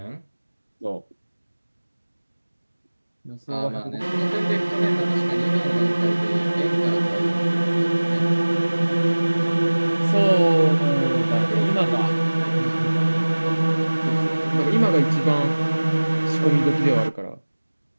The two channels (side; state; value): both; inverted; correlation -1.00